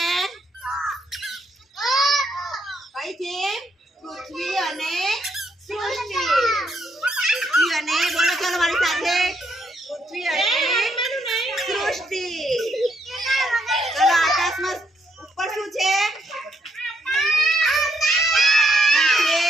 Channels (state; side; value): normal; both; correlation 0.75